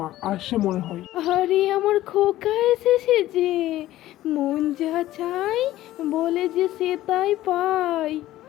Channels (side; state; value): right; quieter; 14.9 dB